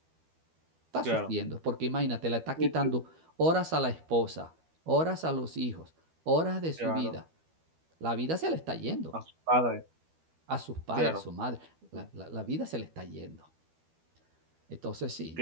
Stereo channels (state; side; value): late; left; 12 ms